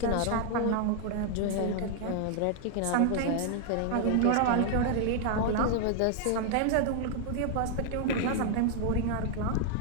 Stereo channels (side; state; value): both; different; correlation 0.00